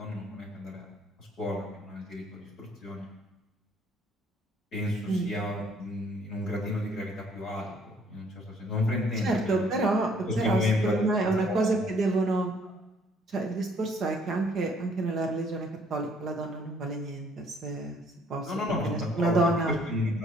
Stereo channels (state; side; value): normal; both; correlation 0.62